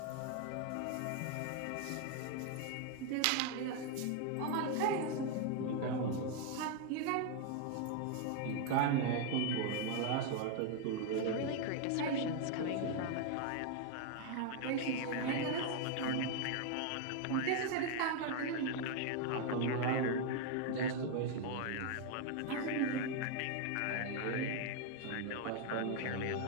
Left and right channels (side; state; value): both; different; correlation 0.01